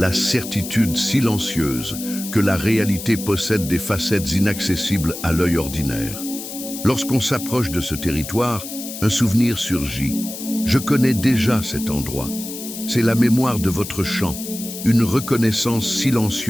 certitude silencieuse que la réalité possède des facettes inaccessibles à l'œil ordinaire. Lorsqu'on s'approche de ce territoire, un souvenir surgit. Je connais déjà cet endroit. C'est la mémoire de votre chant, une reconnaissance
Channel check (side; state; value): left; noise; hiss, 10 dB below the sound